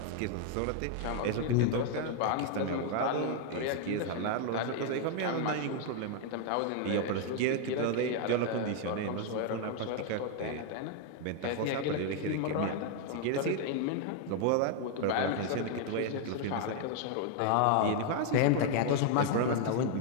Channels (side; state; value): both; different; correlation 0.00